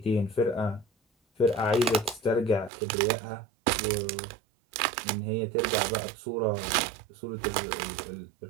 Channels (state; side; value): drops out; left; at 2.7 s